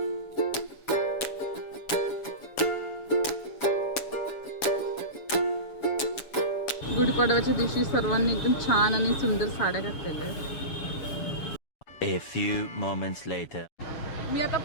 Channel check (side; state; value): right; late; 7.1 ms